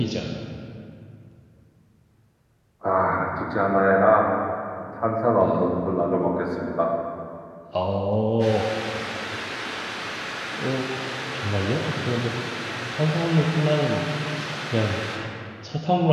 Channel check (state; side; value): identical; both; correlation 1.00